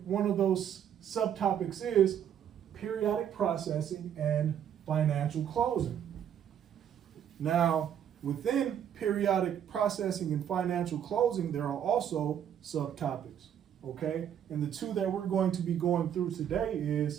one of those subtopics is periodic processing and financial closing. Now, within periodic processing and financial closing, there are also subtopics, okay? And the two that we're going to be going through today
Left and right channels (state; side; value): quieter; left; 9.3 dB